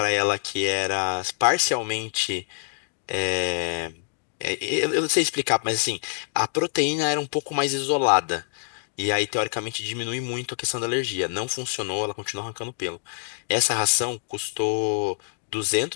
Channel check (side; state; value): right; silent; digital silence